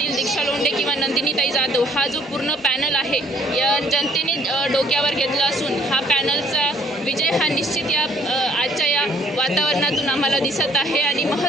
दीक्षा लोंढे किंवा नंदिनीताई जाधव हा जो पूर्ण पॅनल आहे या जनतेने डोक्यावर घेतला असून हा पॅनलचा विजय हा निश्चित या आजच्या या वातावरणातून आम्हाला दिसत आहे. आणि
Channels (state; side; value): normal; both; correlation 0.61